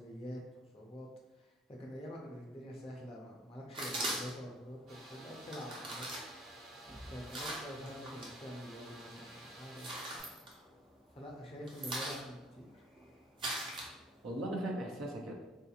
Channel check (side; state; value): both; normal; correlation 0.57